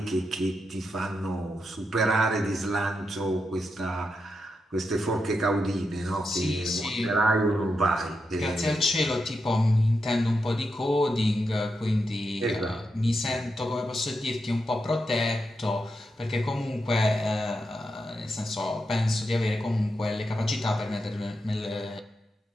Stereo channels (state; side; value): normal; both; correlation 0.85